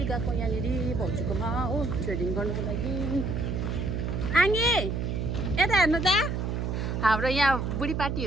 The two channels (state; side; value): noise; right; hum, 1 dB below the sound